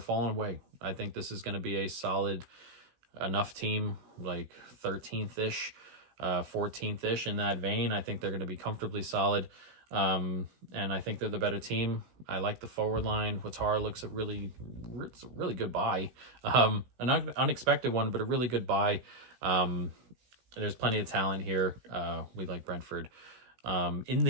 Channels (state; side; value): late; left; 16 ms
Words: away. I think this is going to be a solid enough team, like 13th-ish, 14th-ish in that vein. I think they're going to be comfortably solid. And I think they're the better team. I like the forward line. Watara looks it's a really good buy. An unexpected one, but a really good buy. There's plenty of talent here. We like Brentford in